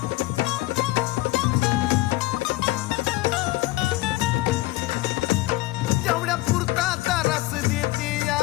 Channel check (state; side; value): quieter; right; 19.0 dB